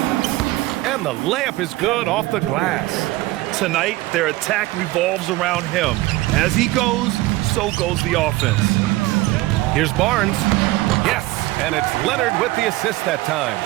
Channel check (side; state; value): left; quieter; 18.6 dB